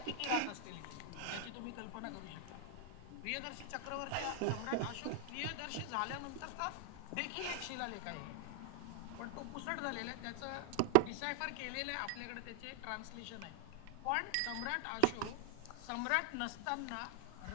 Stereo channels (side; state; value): both; different; correlation 0.00